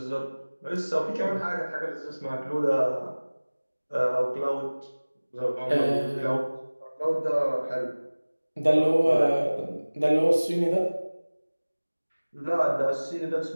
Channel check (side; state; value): both; inverted; correlation -1.00